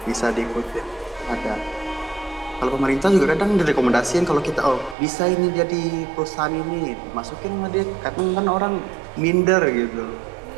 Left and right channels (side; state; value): left; drops out; at 5.0 s